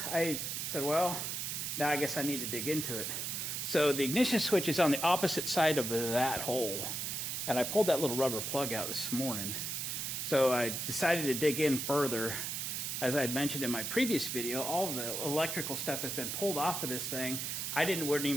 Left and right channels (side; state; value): right; noise; hiss, 3 dB below the sound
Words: I said, well, now I guess I need to dig into it. So the ignition switch is on the opposite side of that hole, and I pulled that little rubber plug out this morning. So I decided to dig in further. As I had mentioned in my previous video, all of the electrical stuff has been pulled off of this thing. I wasn't